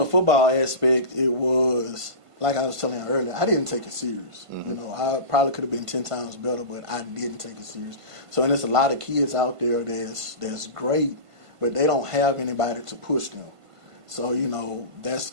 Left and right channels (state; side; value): late; left; 1.5 ms